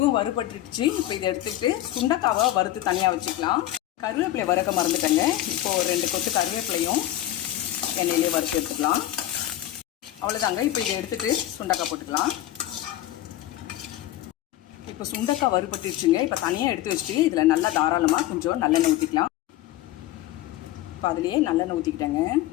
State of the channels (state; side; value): quieter; right; 14.1 dB